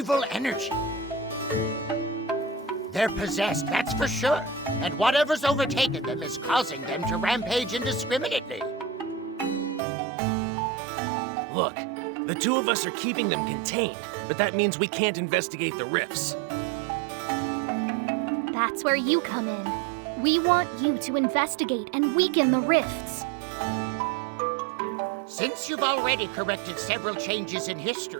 energy. They're possessed, that's for sure. And whatever's overtaken them is causing them to rampage indiscriminately. Look, the two of us are keeping them contained, but that means we can't investigate the rifts. That's where you come in. We want you to investigate and weaken the rifts. Since you've already corrected several changes in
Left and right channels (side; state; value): left; drops out; at 9.8 s